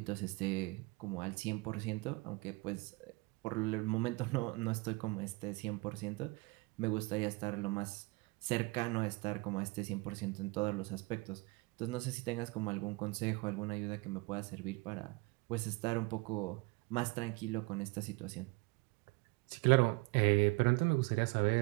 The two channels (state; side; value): quieter; left; 24.4 dB